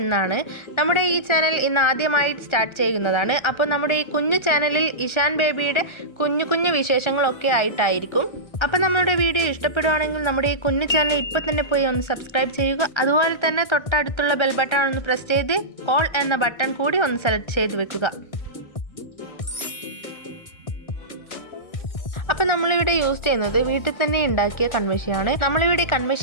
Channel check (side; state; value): right; late; 1.4 ms